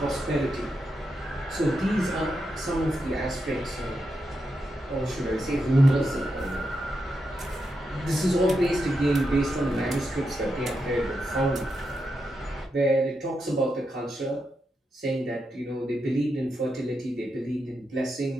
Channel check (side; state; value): both; normal; correlation 0.85